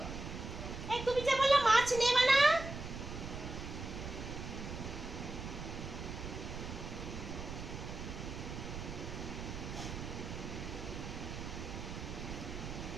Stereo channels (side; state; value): right; noise; rumble, 7 dB below the sound